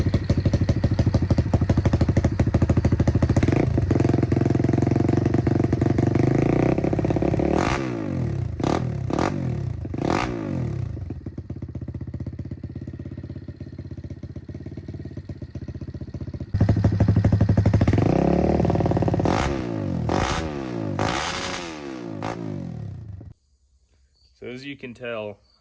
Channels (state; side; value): identical; both; correlation 1.00